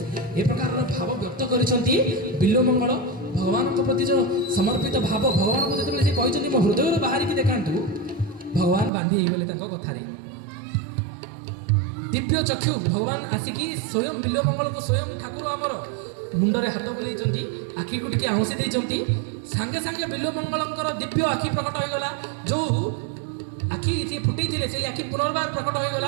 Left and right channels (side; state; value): left; drops out; at 8.9 s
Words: ଏ ପ୍ରକାରର ଭାବ ବ୍ୟକ୍ତ କରିଛନ୍ତି ବିଲ୍ୱମଙ୍ଗଳ। ଭଗବାନଙ୍କ ପ୍ରତି ଯେଉଁ ସମର୍ପିତ ଭାବ, ଭଗବାନଙ୍କୁ ଯେତେବେଳେ ସେ କହିଛନ୍ତି ମୋ ହୃଦୟରୁ ବାହାରିକି ଦେଖାନ୍ତୁ, ଭଗବାନ ବାନ୍ଧି ହେଇଗଲେ ତାଙ୍କ କଥାରେ। ଦିବ୍ୟ ଚକ୍ଷୁ ଭଗବାନ ଆସିକି ସ୍ୱୟଂ ବିଲ୍ୱମଙ୍ଗଳଙ୍କୁ, ସ୍ୱୟଂ ଠାକୁର ଆମର ମୁଣ୍ଡରେ ହାତ ବୁଲେଇଛନ୍ତି, ଆଖିକୁ ଟିକେ ଆଉଁସି ଦେଇଛନ୍ତି। ସାଙ୍ଗେ ସାଙ୍ଗେ ବିଲ୍ୱମଙ୍ଗଳଙ୍କର ଦିବ୍ୟ ଆଖି ପ୍ରକଟ ହୋଇଗଲା। ଯେଉଁ ଆଖି ଯିଏ ଫୁଟେଇଥିଲେ ସେଇ ଆଖି ପୁନର୍ବାର ପ୍ରକଟ